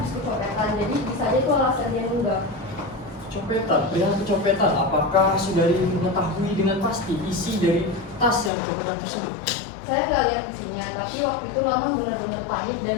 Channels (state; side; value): drops out; right; at 8.5 s